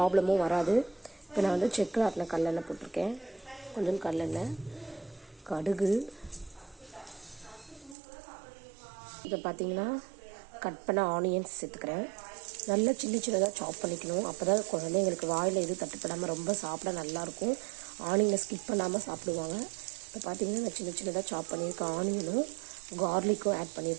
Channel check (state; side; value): drops out; left; at 8.0 s